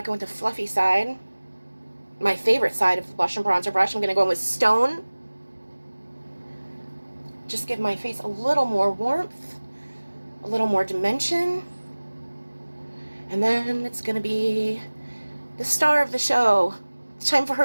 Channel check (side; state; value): both; inverted; correlation -1.00